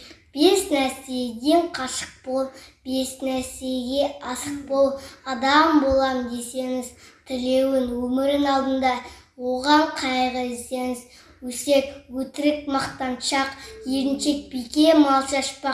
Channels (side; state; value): both; identical; correlation 1.00